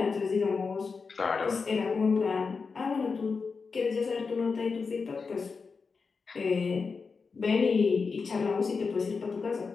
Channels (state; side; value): quieter; right; 4.9 dB